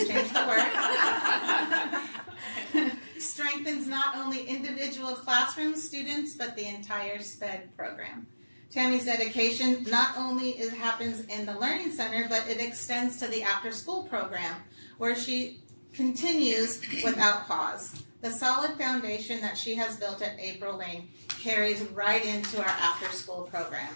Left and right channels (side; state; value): both; inverted; correlation -1.00